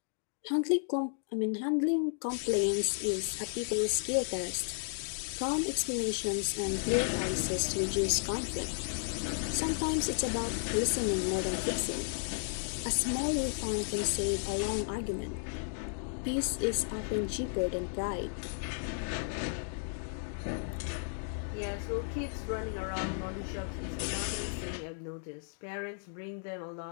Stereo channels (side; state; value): right; silent; digital silence